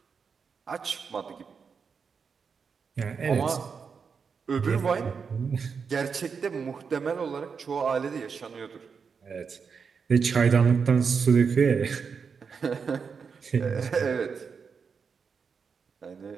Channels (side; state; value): left; quieter; 5.8 dB